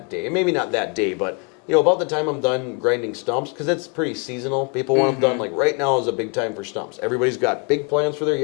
day. And maybe not that day, but you know, about the time I'm done grinding stumps, because it's pretty seasonal. People want them done, like right now is a big time for stumps. Everybody's got big plans for their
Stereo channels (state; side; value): quieter; right; 35.3 dB